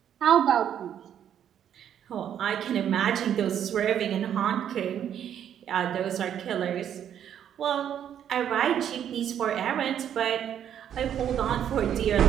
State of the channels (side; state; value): left; quieter; 9.6 dB